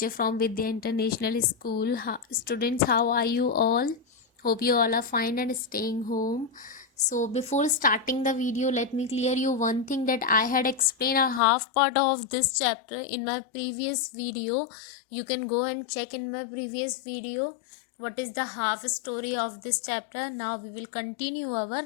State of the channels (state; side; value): drops out; right; at 11.4 s